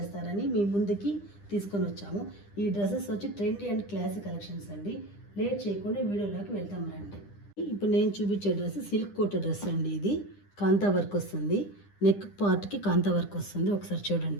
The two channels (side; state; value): right; late; 9.9 ms